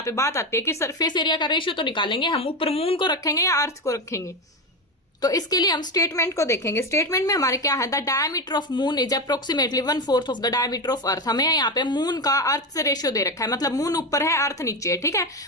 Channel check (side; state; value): both; normal; correlation 0.16